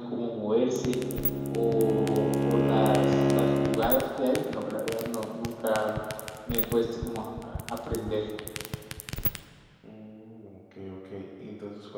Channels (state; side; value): identical; both; correlation 1.00